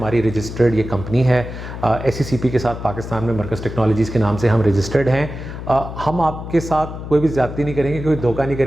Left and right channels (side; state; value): left; noise; hum, 9 dB below the sound